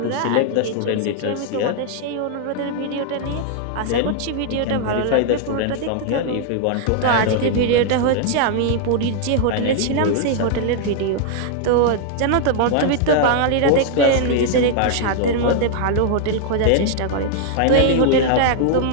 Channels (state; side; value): different; both; correlation 0.00